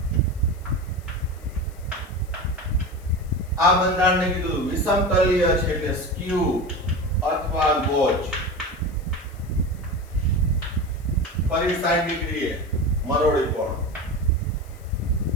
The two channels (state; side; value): noise; left; hiss, 27 dB below the sound